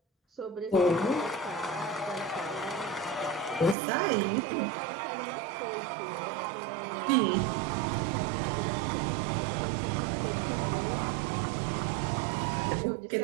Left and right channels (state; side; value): drops out; left; at 3.8 s